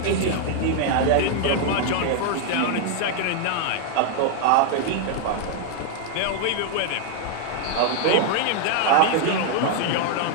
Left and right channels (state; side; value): different; both; correlation 0.00